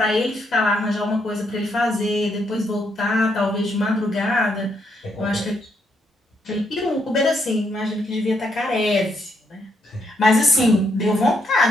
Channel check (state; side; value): normal; both; correlation 0.76